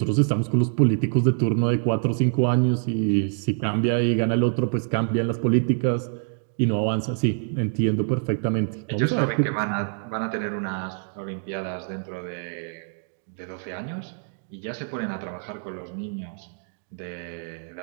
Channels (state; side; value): silent; left; digital silence